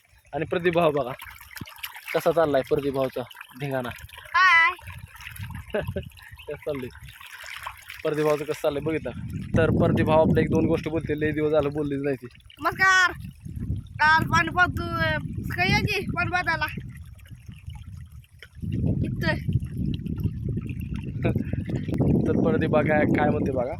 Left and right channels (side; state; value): both; identical; correlation 1.00